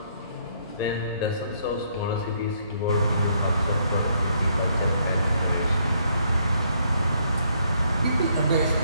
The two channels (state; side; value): inverted; both; correlation -0.70